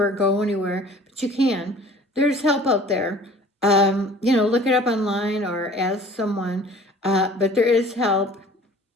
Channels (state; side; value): normal; both; correlation 0.48